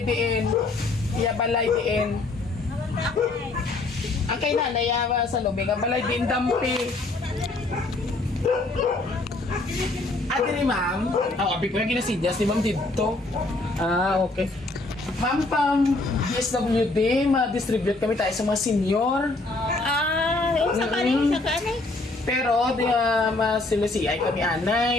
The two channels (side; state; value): right; quieter; 3.1 dB